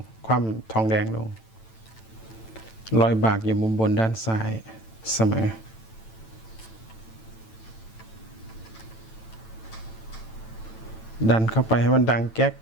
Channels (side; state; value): right; late; 9.0 ms